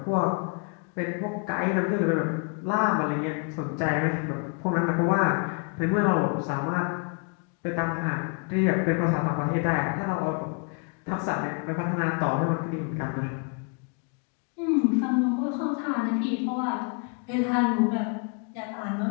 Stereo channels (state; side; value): quieter; right; 39.0 dB